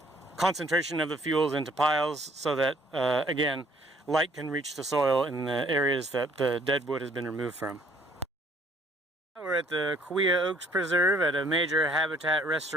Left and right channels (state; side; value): normal; both; correlation 0.61